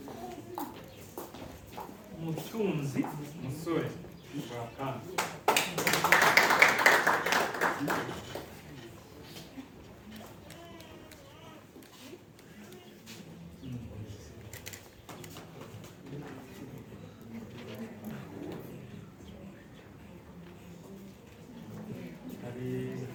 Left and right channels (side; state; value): both; identical; correlation 1.00